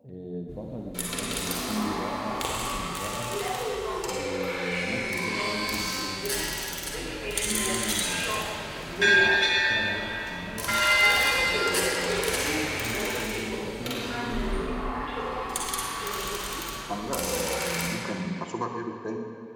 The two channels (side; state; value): both; identical; correlation 1.00